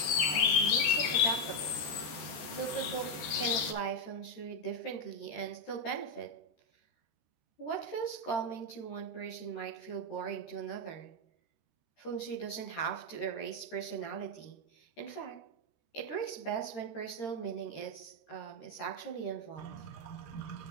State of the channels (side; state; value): right; late; 13 ms